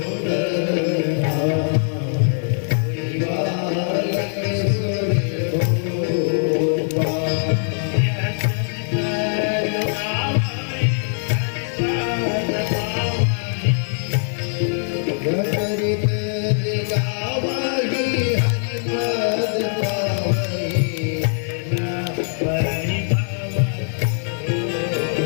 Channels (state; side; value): silent; right; digital silence